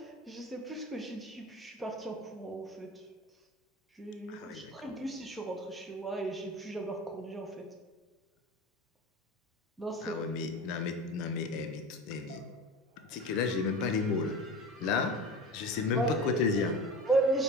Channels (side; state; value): both; normal; correlation 0.32